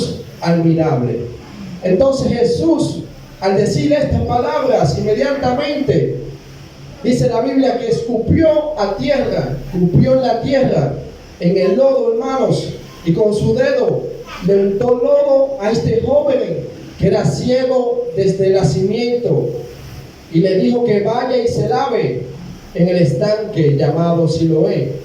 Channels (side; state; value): both; identical; correlation 1.00